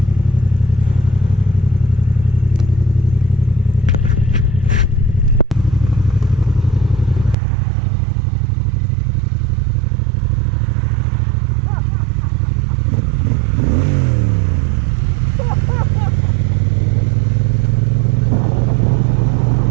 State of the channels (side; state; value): left; drops out; at 7.4 s